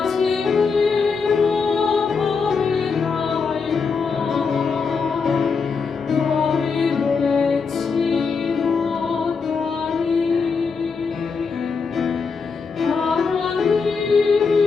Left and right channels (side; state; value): right; quieter; 5.2 dB